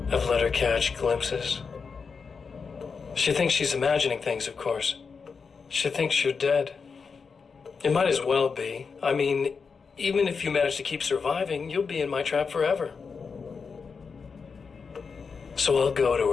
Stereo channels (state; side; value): quieter; right; 5.3 dB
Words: I've let her catch glimpses. She thinks she's imagining things, of course. She thinks you're dead. It might as well be. I mean, even if you manage to keep surviving, you'll be in my trap forever. So I'll go to